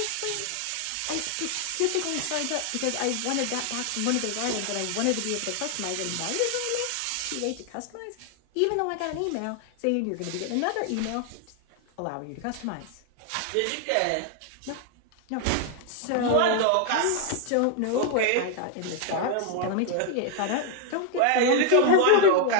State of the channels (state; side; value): different; both; correlation 0.00